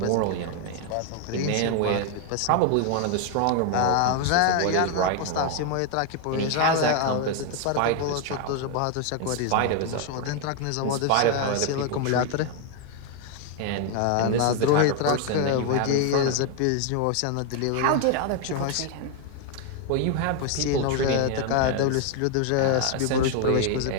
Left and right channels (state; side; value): different; both; correlation 0.01